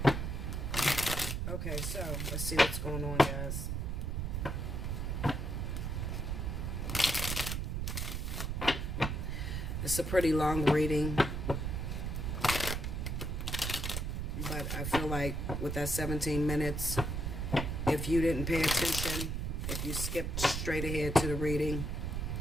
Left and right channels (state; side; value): noise; right; rumble, 2 dB below the sound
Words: Okay, so let's see what's going on, guys. It's a pretty long reading, but I feel like with that 17 minutes, if you didn't pay attention, if you skipped straight ahead to the reading,